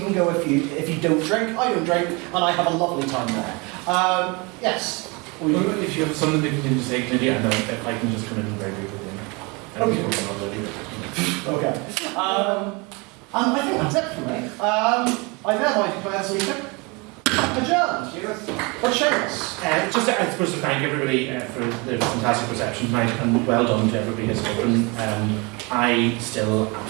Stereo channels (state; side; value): quieter; left; 28.3 dB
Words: go if you don't drink. I don't drink, and I have a lovely time there. Yes. Well, if you have something that you can just say, maybe I know if I can just come in very quickly. Okay. And I think that's it for me. I thereby declare this meeting adjourned. But Seamus. Just, I suppose, to thank everybody for the fantastic reception tonight, and well done to everybody who's spoken. I still